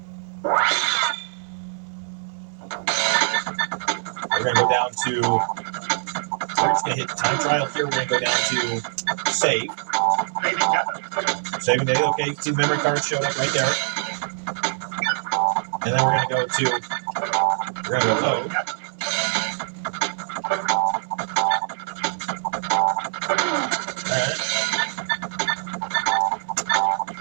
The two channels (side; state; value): left; silent; digital silence